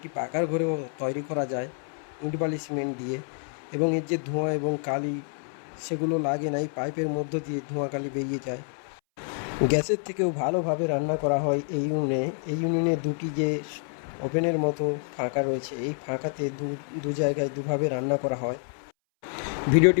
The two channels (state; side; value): silent; right; 60 dB below the other